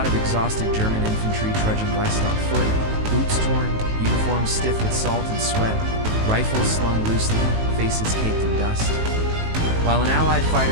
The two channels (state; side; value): late; left; 18 ms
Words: of exhausted German infantry trudging west on foot, boots torn, uniforms stiff with salt and sweat, rifles slung loosely, faces caked in dust. While an Allied